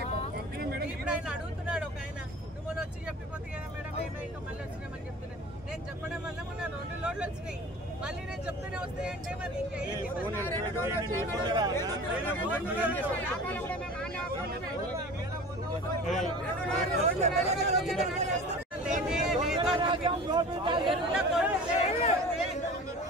ఇప్పుడు ఆయన అడుగుతున్నాడు ఒక ఆయన, నువ్వు మొన్న వచ్చి చెప్పిపోతే కదా మేడం ఏమో ఇంకా మళ్ళీ వచ్చినామని చెప్తున్నాను. నేను చెప్పడం వల్ల మొన్న 2 లోడ్లు వచ్చినాయి. మళ్ళీ నేను చెప్తూనే వస్తాయంటే మరి ఇంకా ఏంటి?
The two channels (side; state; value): both; normal; correlation 0.39